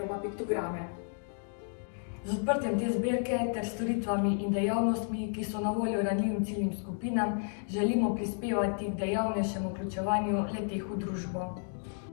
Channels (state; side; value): silent; right; 56 dB below the other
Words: piktograme. Z odprtjem te zbirke ter storitvami in dejavnostmi, ki so na voljo ranljivim ciljnim skupinam, želimo prispevati k dejavnejšemu vključevanju le-teh v družbo.